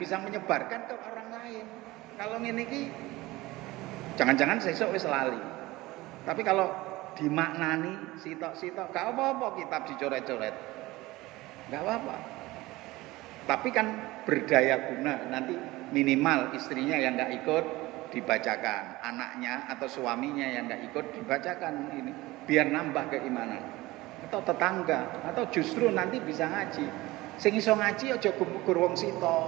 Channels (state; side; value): quieter; left; 19.5 dB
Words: bisa menyebarkan ke orang lain. Kalau ngene iki jangan-jangan sesuk wis lali. Tapi kalau dimaknani sitok-sitok gak apa-apa kitab dicoret-coret. Gak apa-apa. Tapi kan berdaya guna. Nanti minimal istrinya yang gak ikut dibacakan, anaknya atau suaminya yang gak ikut dibacakan ini, biar nambah keimanan. Atau tetangga, atau justru nanti bisa ngaji. Sing iso ngaji aja gugur wong